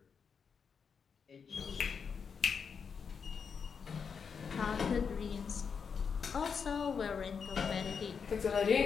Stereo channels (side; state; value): right; quieter; 6.2 dB